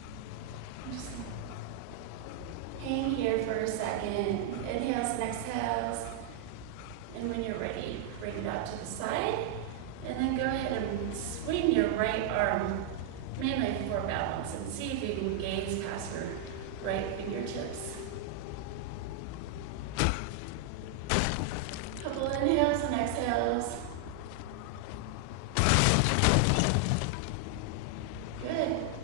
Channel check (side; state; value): both; different; correlation 0.00